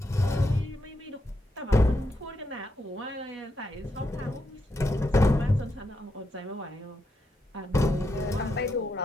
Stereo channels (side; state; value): both; normal; correlation 0.82